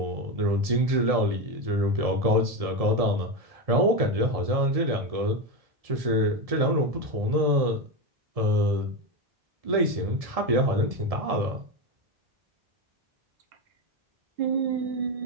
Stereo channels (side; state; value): left; late; 1.7 ms